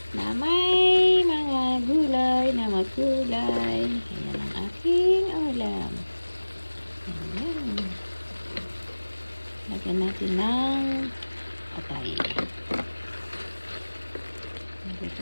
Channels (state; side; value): inverted; both; correlation -1.00